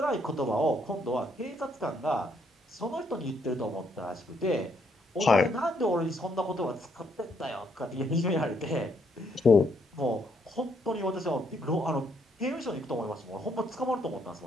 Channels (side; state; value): both; normal; correlation 0.72